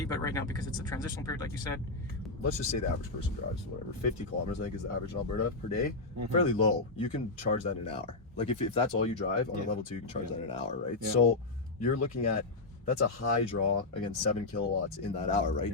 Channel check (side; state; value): right; quieter; 3.3 dB